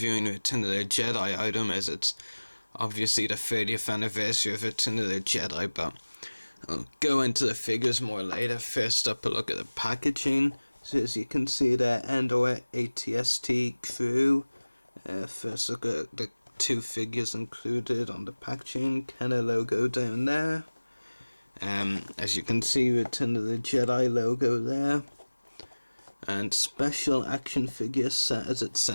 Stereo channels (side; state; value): both; inverted; correlation -1.00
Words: Return of the Jedi item as it's obviously the 30th anniversary of Return of the Jedi, but I'll go into the figures more later. First up, a look at the packaging. So as you can see there, Endor ATST crew. First look at the two figures included on the packaging. Kenner logo down there. As you can see, Return of the Jedi logo there. And special action figure set as it